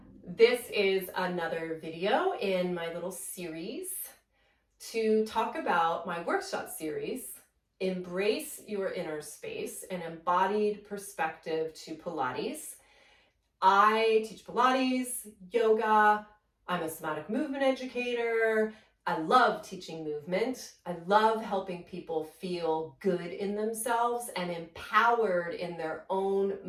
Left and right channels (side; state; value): both; identical; correlation 1.00